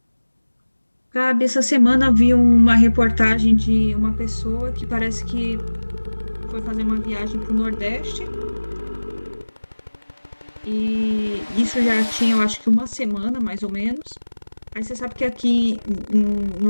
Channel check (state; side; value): inverted; both; correlation -1.00